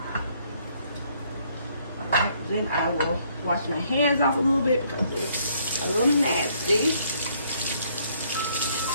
Then I will wash my hands off a little bit because it's a little nasty.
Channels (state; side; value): inverted; both; correlation -0.67